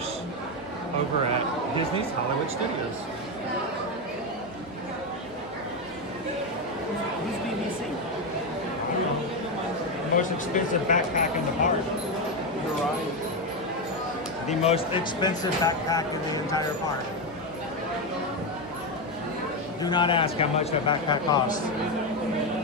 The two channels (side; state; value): both; normal; correlation 0.09